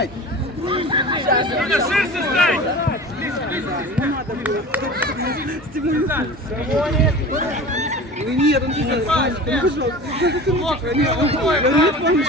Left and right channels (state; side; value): normal; both; correlation 0.36